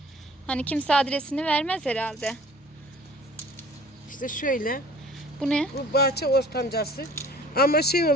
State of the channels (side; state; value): both; normal; correlation 0.50